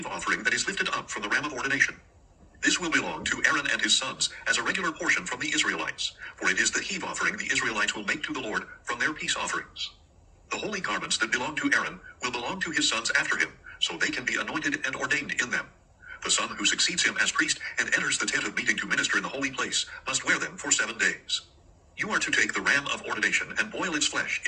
offering that is lifted up from the ram of ordination. This will belong to Aaron and his sons as a regular portion from the Israelites, for it is the heave offering the Israelites will make to the Lord from their peace offerings. The holy garments that belong to Aaron will belong to his sons after him, so they can be anointed and ordained in them. The son who succeeds him as priest and enters the tent of meeting to minister in the holy place must wear them for 7 days. You are to take the ram of ordination and boil its flesh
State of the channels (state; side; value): identical; both; correlation 1.00